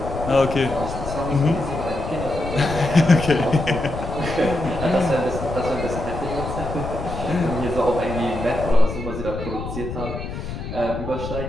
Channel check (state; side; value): noise; left; rumble, 7 dB below the sound